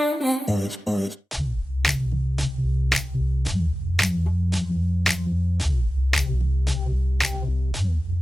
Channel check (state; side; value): normal; both; correlation 0.95